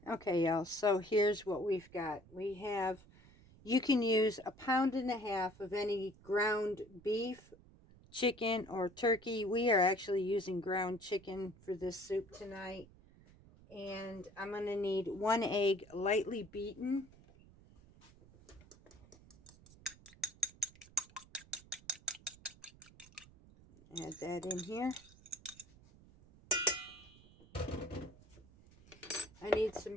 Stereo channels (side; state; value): right; noise; rumble, 24 dB below the sound